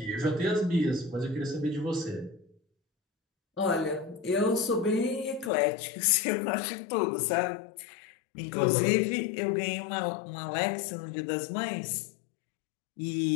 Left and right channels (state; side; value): drops out; right; at 5.5 s